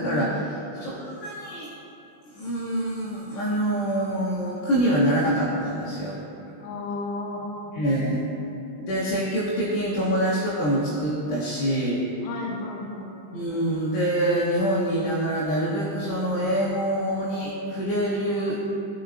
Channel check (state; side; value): late; right; 20 ms